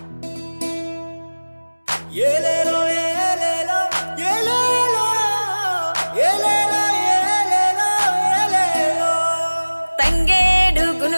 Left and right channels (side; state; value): both; inverted; correlation -1.00